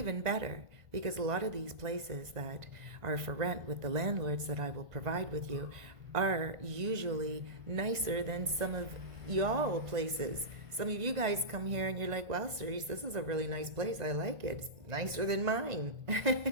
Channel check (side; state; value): left; late; 1.5 ms